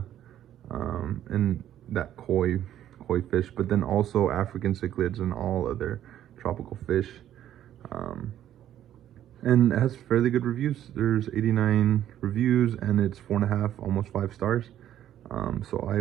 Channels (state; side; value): quieter; left; 11.5 dB